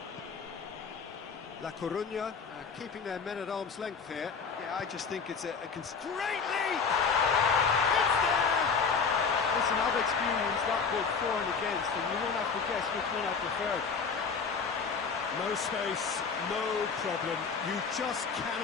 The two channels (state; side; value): quieter; right; 5.5 dB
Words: La Coruña keeping their men at arm's length here. Yeah, I just think it's a Great lead! It's there! Listen, I've experienced that both for and against, and you won't have to guess which one I preferred. No space, no problem. You just